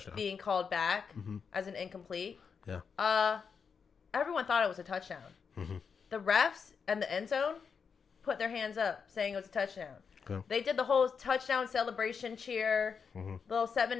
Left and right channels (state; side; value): quieter; right; 6.1 dB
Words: Being called back as an incomplete. Yeah. Everyone thought it was a touchdown. The refs and the end zone put their hands up saying it was a touchdown. Okay. They did the whole touchdown celebration cheer, little 7